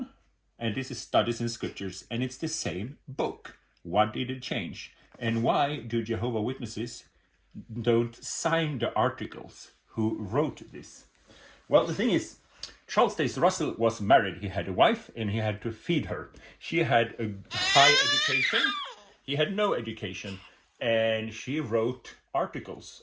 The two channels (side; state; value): both; identical; correlation 1.00